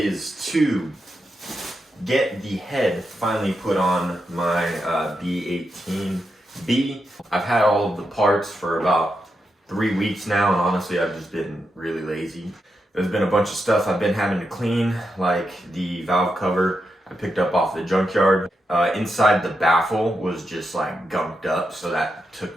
to get the head finally put on my B18B. I've had all of the parts for about 3 weeks now, and honestly I've just been really lazy. There's been a bunch of stuff I've been having to clean, like the valve cover I picked up off the junkyard. Inside the baffle was just like gunked up, so that took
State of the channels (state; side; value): normal; both; correlation 0.85